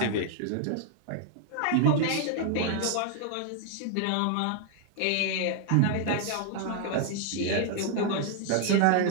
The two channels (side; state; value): both; different; correlation 0.00